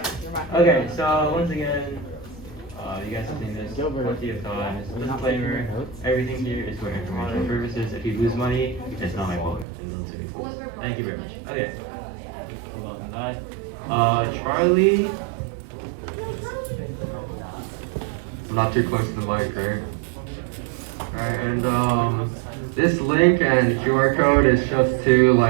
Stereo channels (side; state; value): left; drops out; at 9.7 s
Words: Okay. So once again, you guys have seen this plenty of times. Disclaimer: everything here is for informational purposes. If you lose money, it's not my fault. Thank you very much. Okay. Charlie. I'm not too close to the mic, right? Alright, and this link and QR code is just to